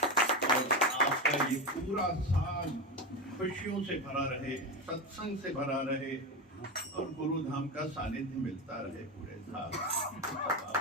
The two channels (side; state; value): both; normal; correlation 0.17